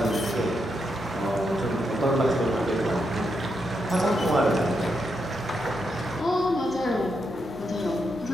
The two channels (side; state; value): both; normal; correlation 0.82